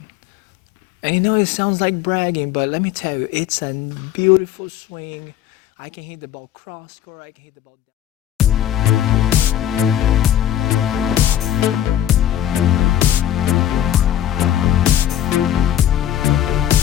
And you know, it sounds like bragging, but let me tell you, it's a beautiful swing. I can hit the ball cross court, I can hit the ball down.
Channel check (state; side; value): quieter; right; 11.3 dB